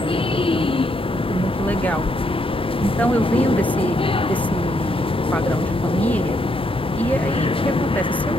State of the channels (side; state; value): both; normal; correlation 0.75